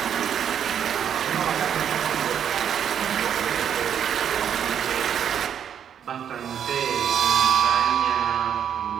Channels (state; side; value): quieter; left; 8.7 dB